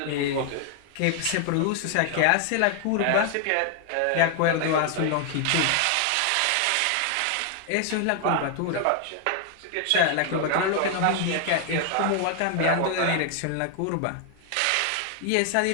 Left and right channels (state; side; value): different; both; correlation 0.00